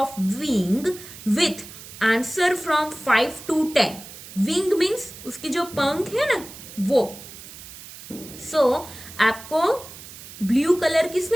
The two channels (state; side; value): noise; right; hiss, 15 dB below the sound